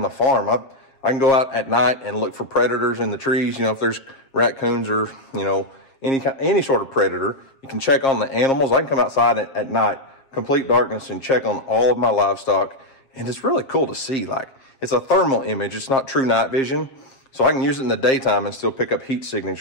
the farm. I can go out at night and look for predators in the trees. You know, if there's raccoons or, you know, any sort of predator, you can check on the animals. I can come outside at night, complete darkness, and check on all of my livestock. And it's really cool to see. Like, it's a thermal image. It's not true night vision. So I can use it in the daytime and still pick up heat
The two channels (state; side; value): late; right; 7.4 ms